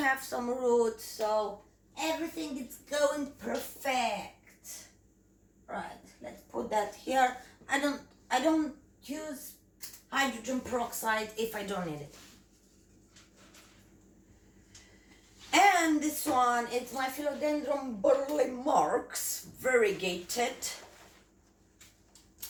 some roots, so everything is going perfect. Right, let's put that here. I don't use hydrogen peroxide if I don't need it. And this one, it's my Philodendron burle marks, variegated,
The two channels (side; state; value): both; identical; correlation 1.00